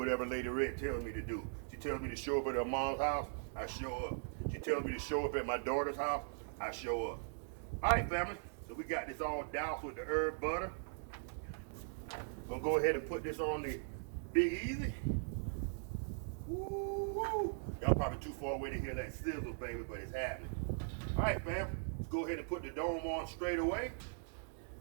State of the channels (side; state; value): left; silent; digital silence